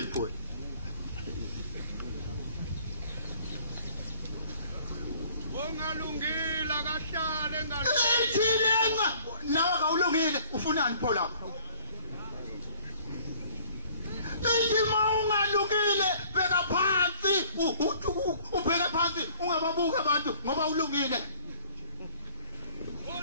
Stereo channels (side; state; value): both; inverted; correlation -0.53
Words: ipho ungalungile akahlale ngalo ithilena nawe awulungile ufunani pho lapha ithi mawungalungile beka phansi ubheke phansi ungababuka abantu ngoba ulungile